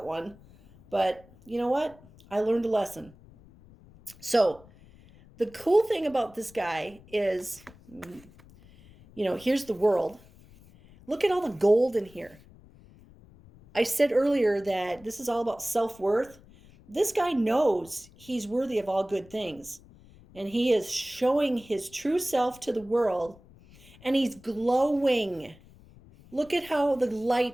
one, but you know what, I learned a lesson. So the cool thing about this guy is, here's the world. Look at all the gold in here. I said earlier that this is all about self-worth. This guy knows he's worthy of all good things, and he is showing his true self to the world, and he's glowing. Look at how the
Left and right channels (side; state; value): left; noise; rumble, 24 dB below the sound